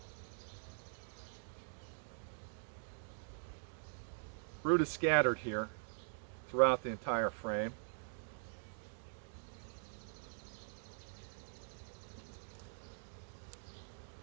Brood is scattered here throughout the entire frame.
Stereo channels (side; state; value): left; silent; digital silence